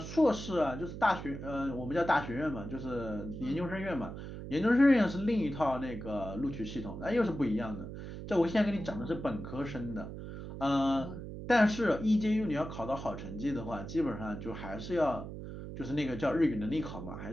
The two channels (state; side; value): noise; right; hum, 9 dB below the sound